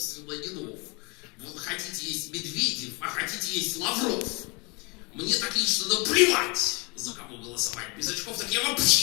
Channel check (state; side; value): quieter; right; 29.1 dB